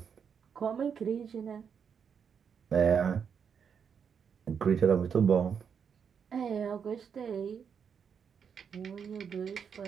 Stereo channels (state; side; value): quieter; left; 7.0 dB